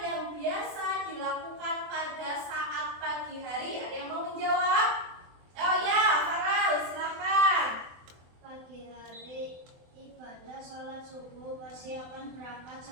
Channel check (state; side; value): late; left; 24 ms